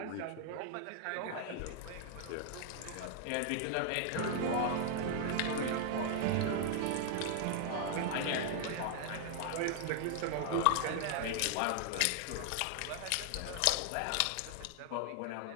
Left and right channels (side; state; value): both; different; correlation 0.00